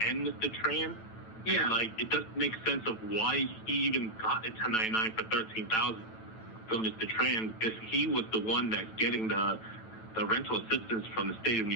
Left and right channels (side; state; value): right; late; 9.1 ms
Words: and Mr. Tran. Yeah. Like, it doesn't make sense of why he even got a 1099 for $13,000 from Mr. Tran if he was the one that's getting the rental assistance from the state of